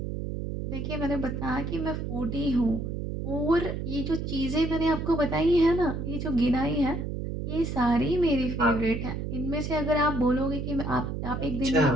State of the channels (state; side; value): noise; right; hum, 4 dB below the sound